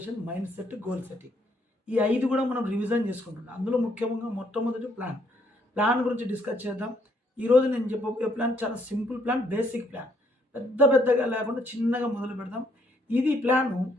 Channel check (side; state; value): both; normal; correlation 0.70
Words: mind set, goal setting. ఈ 5 కూడా మనం రివిజన్ చేసుకుంటున్నాం. అందులో ముఖ్యంగా మొట్టమొదటి ప్లాన్ గురించి డిస్కస్ చేద్దాం. ఈరోజు నేను చెప్పబోయే ప్లాన్ చాలా సింపుల్ ప్లాన్, బేసిక్ ప్లాన్. పెద్దగా లేకుండా చిన్నగా మొదలు పెడదాం. ఇది ప్లాను